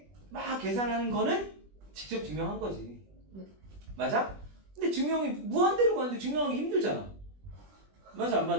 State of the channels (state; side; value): late; left; 20 ms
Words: 막 계산하는 거는 직접 증명한 거지. 맞아? 근데 증명이 무한대로 가는데 증명하기 힘들잖아. 맞아 안